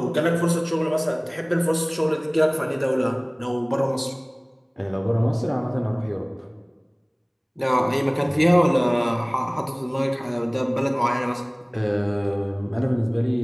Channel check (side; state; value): both; identical; correlation 1.00